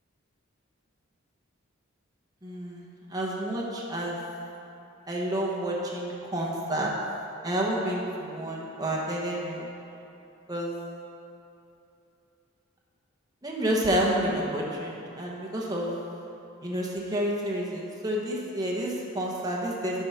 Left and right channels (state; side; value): normal; both; correlation 0.37